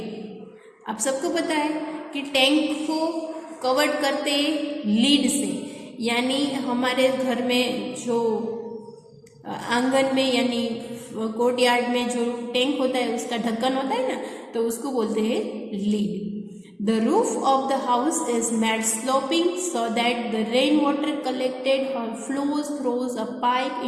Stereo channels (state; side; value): identical; both; correlation 1.00